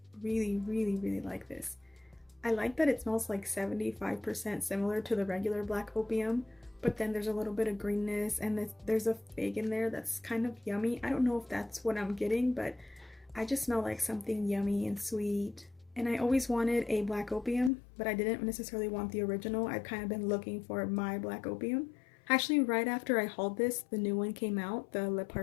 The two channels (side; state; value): right; drops out; at 17.7 s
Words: really like this. I like that it smells like 75% similar to the regular Black Opium, but then there's a little bit of greenness and there's a fig in there that's kind of yummy. I don't know if that's what I'm getting, but I just smell like something yummy and sweet. And I always wanted a Black Opium, but I didn't necessarily want the original. I've kind of been looking for my Black Opium. Actually, right after I hauled this, the new one came out, the Le